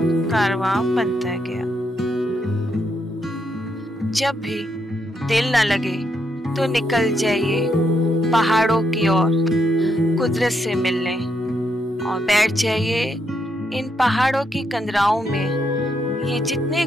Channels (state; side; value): normal; both; correlation 0.78